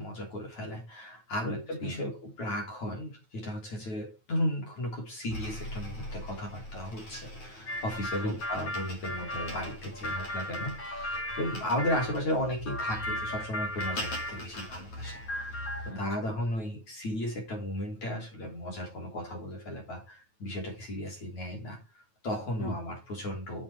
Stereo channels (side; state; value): right; late; 9.2 ms